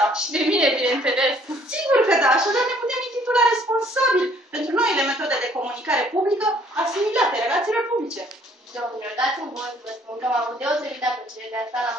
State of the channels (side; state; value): both; normal; correlation 0.60